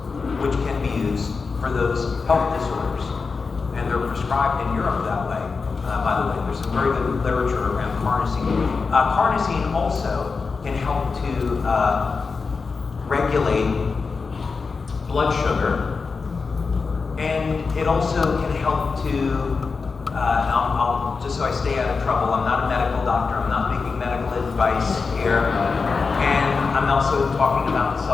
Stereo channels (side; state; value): right; quieter; 4.7 dB